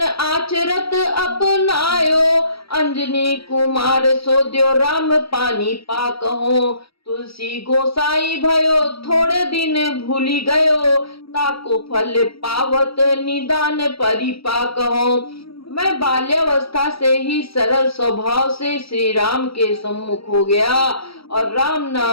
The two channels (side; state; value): right; late; 0.76 ms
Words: आचरत अपनायो, अंजनी कुमार सोद्यो राम पानी पाक हो। तुलसी गोसाई भयो थोड़े दिन भूली गयो, ताको फल पावत निदान परिपाक हो। मैं बाल्यावस्था से ही सरल स्वभाव से श्री राम के सम्मुख हो गया और राम